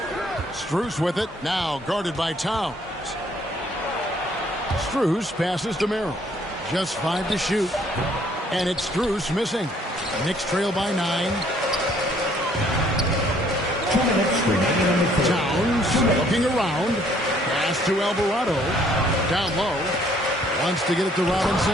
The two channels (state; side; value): normal; both; correlation 0.63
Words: Strus with it. Now guarded by Towns. Strus passes to Merrill. Just 5 to shoot. And it's Strus missing. The Knicks trail by 9. 2 minutes remaining in the third. Towns looking around. Pass to Alvarado. Down low. Wants to get it to